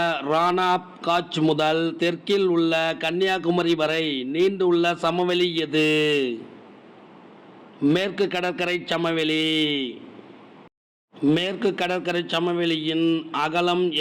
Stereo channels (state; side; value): identical; both; correlation 1.00